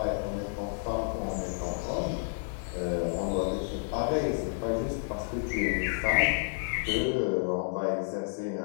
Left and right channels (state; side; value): silent; right; digital silence